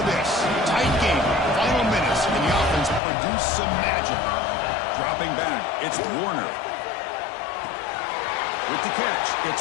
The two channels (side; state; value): right; drops out; at 3.0 s